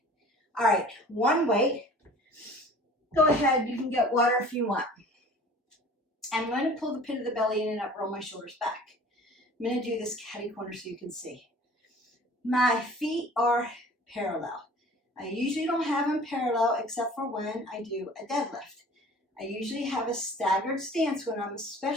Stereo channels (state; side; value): normal; both; correlation 0.46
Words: All right, one weight. Go ahead, you can get water if you want. I'm going to pull the pit of the belly in and up, roll my shoulders back. I'm going to do this catty corner so you can see. My feet are parallel. I usually don't have them parallel except for when I do a deadlift. I usually have a staggered stance when I'm